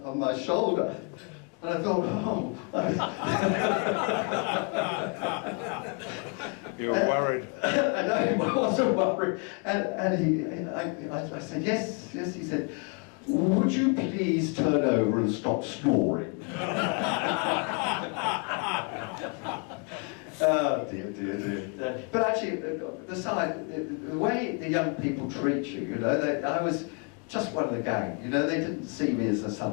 my shoulder. And I thought, oh. You were worried. I know, I wasn't worried. And I said, yes, yes. He said, would you please turn over and stop snoring? Oh, dear, dear, dear. But actually, the way the young people treat you, you know, I was just one of the gang, you know, they didn't see me as some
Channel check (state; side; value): quieter; right; 35.9 dB